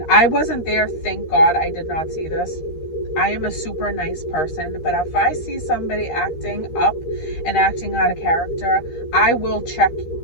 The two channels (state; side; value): late; right; 13 ms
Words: I wasn't there. Thank God I did not see this. I am a super nice person, but if I see somebody acting up and acting out of character, I will check